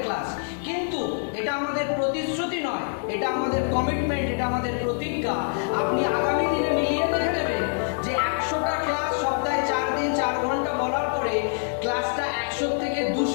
ক্লাস, কিন্তু এটা আমাদের প্রতিশ্রুতি নয়, এটা আমাদের কমিটমেন্ট, এটা আমাদের প্রতিজ্ঞা। আপনি আগামী দিনে মিলিয়ে দেখে নেবেন যে 100টা ক্লাস সপ্তাহে 4 দিন 4 ঘন্টা বলার পরে ক্লাসটা 100 থেকে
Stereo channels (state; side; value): silent; right; 61 dB below the other